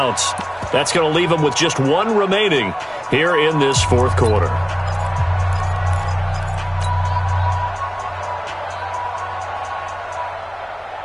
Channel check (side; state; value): both; identical; correlation 1.00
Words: That's going to leave them with just 1 remaining here in this 4th quarter.